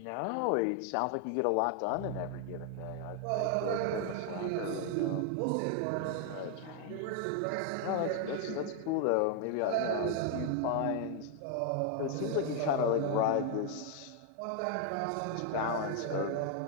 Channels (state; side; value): different; both; correlation 0.00